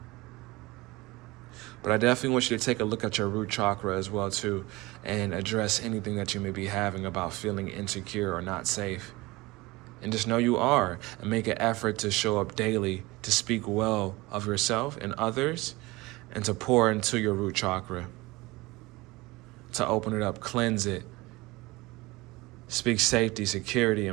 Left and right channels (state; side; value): quieter; left; 21.5 dB